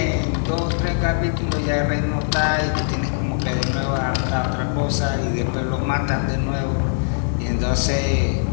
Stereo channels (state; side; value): silent; right; digital silence